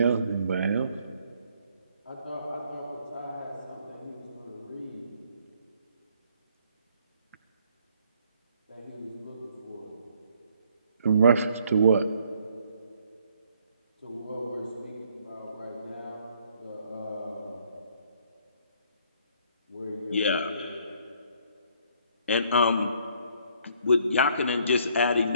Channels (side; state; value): both; inverted; correlation -0.64